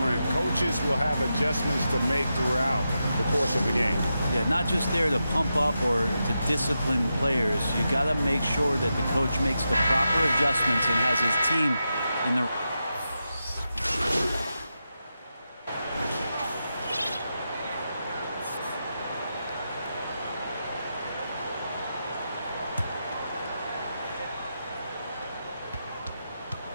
coaches will have adjustments to make throughout the course of the game. Yeah, not just there to pump up or to discipline players. You got to make sure that the coach makes the proper adjustments and has his team in the...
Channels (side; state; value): both; inverted; correlation -0.88